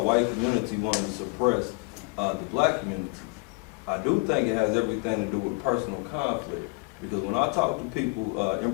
white community wanting to suppress the black community. I do think it has everything to do with personal conflict, because when I talk to people, in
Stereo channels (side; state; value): right; quieter; 32.3 dB